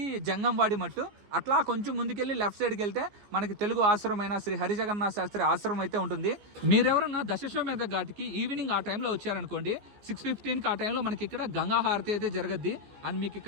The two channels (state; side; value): late; left; 14 ms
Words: జంగంవాడి మట్టు. అట్లా కొంచెం ముందుకెళ్ళి లెఫ్ట్ సైడ్కి వెళ్తే మనకి తెలుగు ఆశ్రమమైన శ్రీ హరిజగన్నాథ శాస్త్రి ఆశ్రమం అయితే ఉంటుంది. మీరెవరన్నా దశాశ్వమేధ ఘాట్కి ఈవినింగ్ ఆ టైంలో వచ్చారనుకోండి, 6:15కి ఆ టైంలో మనకి ఇక్కడ గంగా హారతి అయితే జరగద్ది. అండ్ మీకు